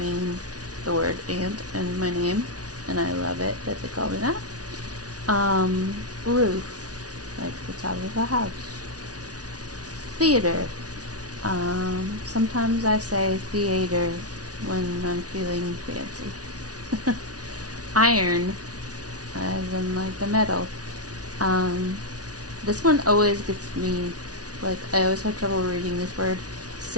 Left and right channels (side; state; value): left; late; 0.68 ms